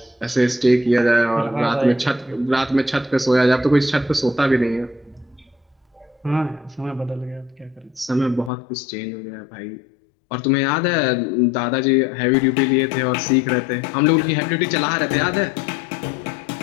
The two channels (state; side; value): drops out; right; at 8.5 s